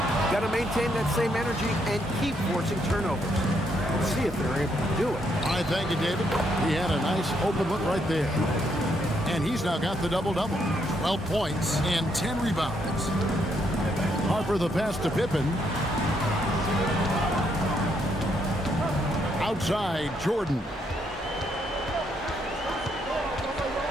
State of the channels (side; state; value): both; normal; correlation 0.75